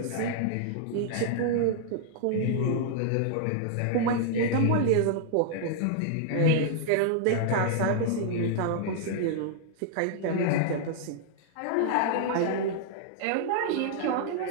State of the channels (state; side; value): different; both; correlation -0.01